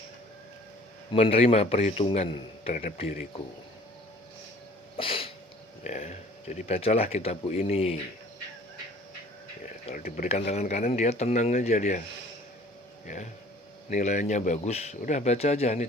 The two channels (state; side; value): normal; both; correlation 0.51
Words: menerima perhitungan terhadap diriku. Ya, jadi bacalah kitabku ini. Ya, kalau diberikan tangan kanan dia tenang aja dia. Ya, nilainya bagus, udah baca aja, ini